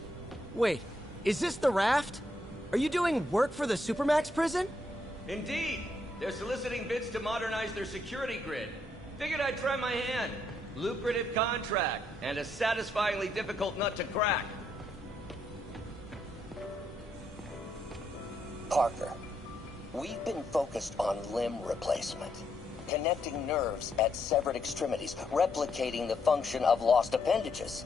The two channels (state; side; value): normal; both; correlation 0.76